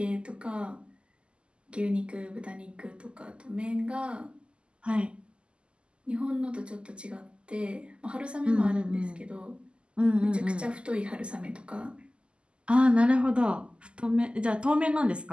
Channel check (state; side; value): late; left; 0.052 ms